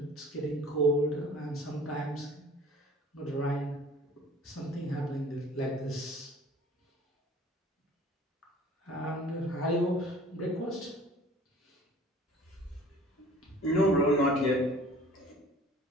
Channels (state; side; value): normal; both; correlation 0.48